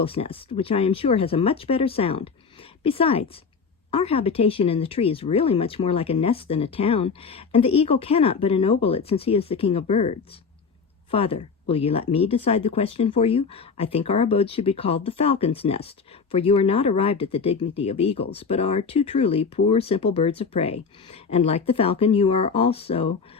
Nest, which I am sure has a much better sound. Besides, our habitation in the tree is really much more like a nest than a town, and the eagle cannot but ennoble it since he is the king of birds. Father, will you let me decide the question for you? I think our abode should be called the Falcon's Nest, for you are not arrived at the dignity of eagles, but are too truly poor, simple birds of prey, and like the falcon you are also,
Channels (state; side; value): quieter; right; 5.4 dB